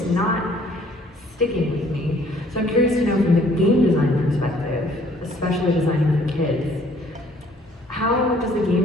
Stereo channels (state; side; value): normal; both; correlation 0.59